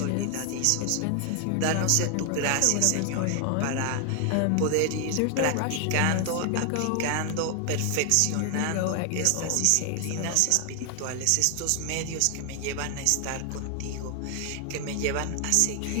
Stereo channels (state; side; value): different; both; correlation 0.00